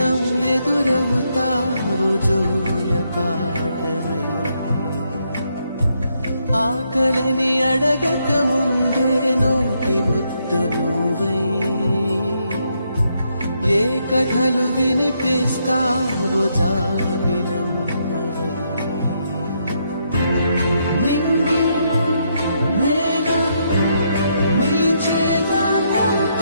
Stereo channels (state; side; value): inverted; both; correlation -0.77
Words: ఎదురవుతావు జోల పాటవై ఆకలని అడగక ముందే నోటి ముద్దు నువ్వై ఏ కథలు వినిపిస్తావు